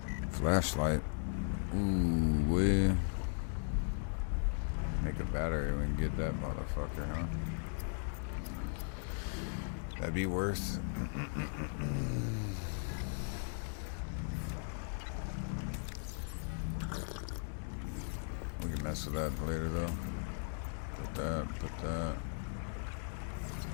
Flashlight. Ooh, we make a battery when we get that motherfucker, huh? That'd be worth. We can mess with that later though. Put that.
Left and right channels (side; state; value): right; silent; digital silence